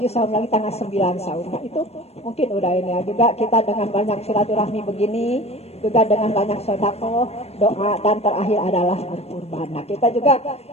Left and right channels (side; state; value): right; late; 0.30 ms